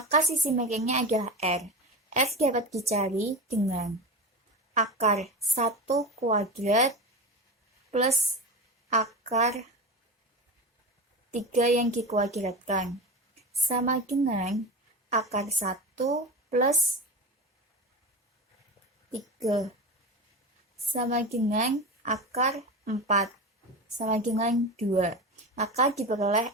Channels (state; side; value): normal; both; correlation 0.24